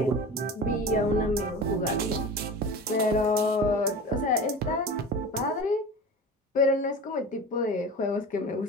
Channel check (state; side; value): normal; both; correlation 0.33